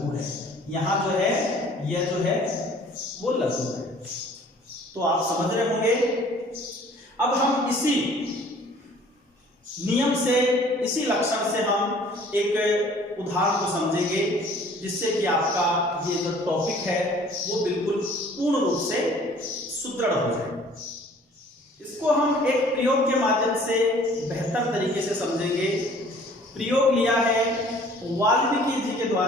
है, यहाँ जो है यह जो है वो लघु है। तो आप समझ रहे होंगे। अब हम इसी नियम से, इसी लक्षण से हम एक उदाहरण को समझेंगे, जिससे कि आपका ये जो टॉपिक है वो बिल्कुल पूर्ण रूप से सुदृढ़ हो जाए। इसको हम एक प्रयोग के माध्यम से बेहतर तरीके से समझेंगे। प्रयोग लिया है वाल्मीकि जी के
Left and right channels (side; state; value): both; normal; correlation 0.53